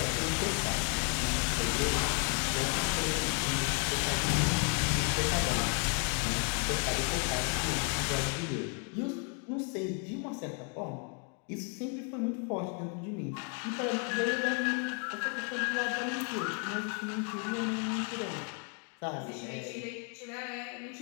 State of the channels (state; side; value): quieter; right; 37.6 dB